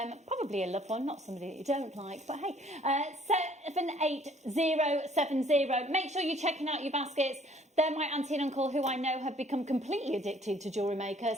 probably a loved one, not somebody that you don't like, but hey, 78070. Make sure you're checking out your baskets. They're my auntie and uncle, who I know have become completely addicted to Jewellery Maker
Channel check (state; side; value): normal; both; correlation 0.59